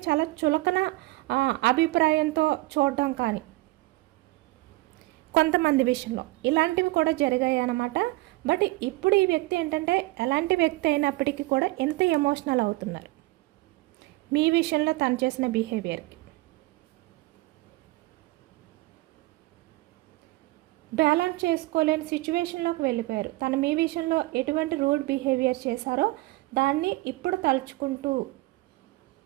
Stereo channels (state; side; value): quieter; left; 20.9 dB